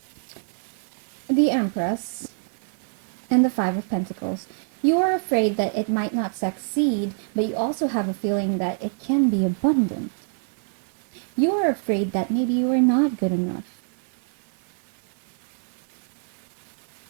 The Empress and the Five of Pentacles. You are afraid that it might not succeed, but you also have a feeling that it can be abundant. You are afraid that maybe you are not good enough.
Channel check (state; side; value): silent; left; 61 dB below the other